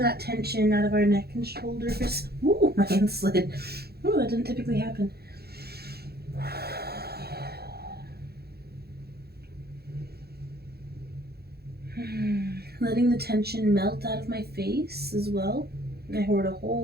tension out of our neck and shoulders. Ooh, my hand slid. Ooh, that doesn't typically happen. Letting the tension melt out of my face as well. I hoard a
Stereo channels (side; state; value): left; late; 0.46 ms